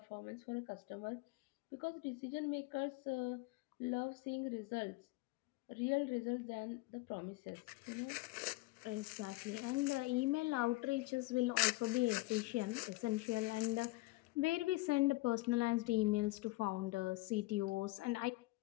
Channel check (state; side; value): quieter; right; 21.3 dB